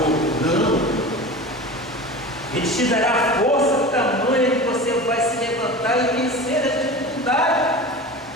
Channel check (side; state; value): both; normal; correlation 0.32